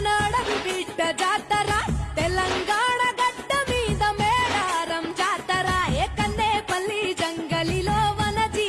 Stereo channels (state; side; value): identical; both; correlation 1.00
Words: నడవి బిడ్డ జాతర తెలంగాణ గడ్డ మీద మేడారం జాతర ఏ కన్నేపల్లి జంగలిలో వన